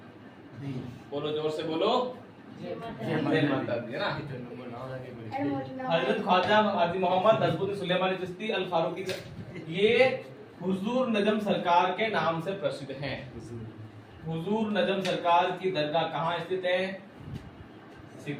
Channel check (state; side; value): identical; both; correlation 1.00